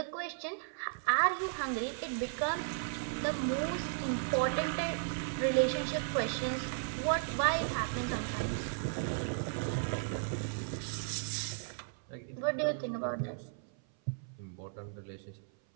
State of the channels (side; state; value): left; silent; 54 dB below the other